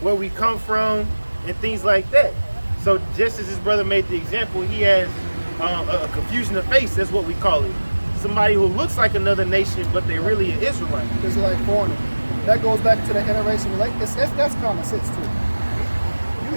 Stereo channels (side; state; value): both; inverted; correlation -1.00